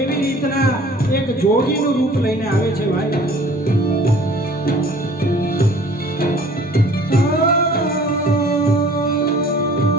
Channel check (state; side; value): normal; both; correlation 0.51